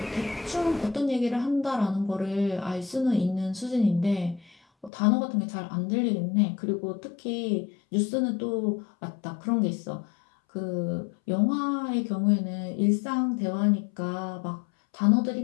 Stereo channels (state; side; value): drops out; right; at 4.9 s